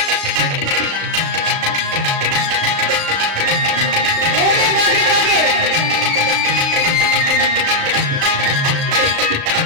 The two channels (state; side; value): late; left; 36 ms